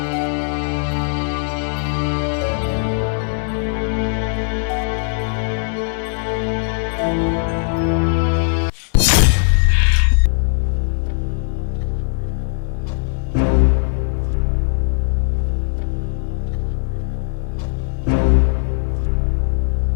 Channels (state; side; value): silent; right; 66 dB below the other